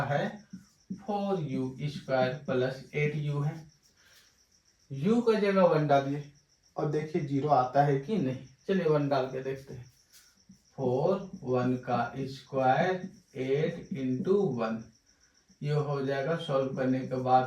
है 4u² प्लस 8u है। u का जगह 1 डालिए और देखिए 0 आता है कि नहीं। चलिए 1 डाल के देखते हैं। 4 1 का स्क्वायर 8 इंटू 1, ये हो जाएगा सॉल्व करने के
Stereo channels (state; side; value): identical; both; correlation 1.00